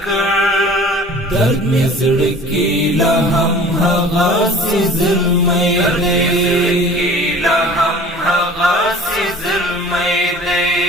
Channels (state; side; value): normal; both; correlation 0.44